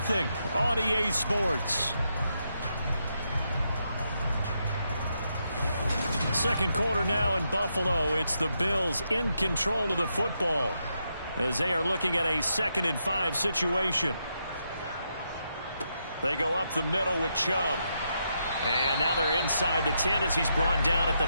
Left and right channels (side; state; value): both; inverted; correlation -0.81